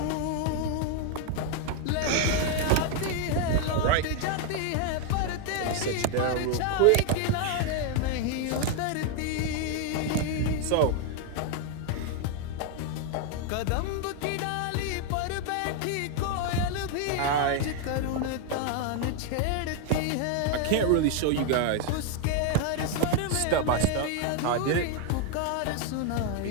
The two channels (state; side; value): different; both; correlation 0.00